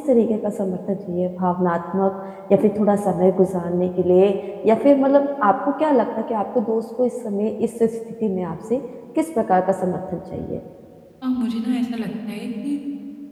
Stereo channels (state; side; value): identical; both; correlation 1.00